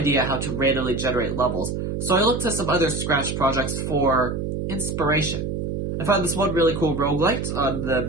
how to randomly generate levels, so I looked to some other Scratch projects for inspiration. I found this one really cool roguelite on the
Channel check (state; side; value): noise; right; hum, 3 dB below the sound